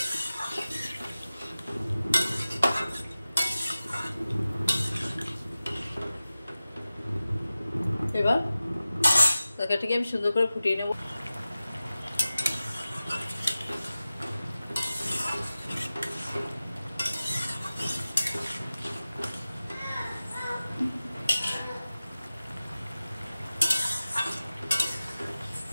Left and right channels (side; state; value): both; inverted; correlation -0.96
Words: এবার তরকারিটাকে আমি সুন্দর করে ফুটিয়ে নেব।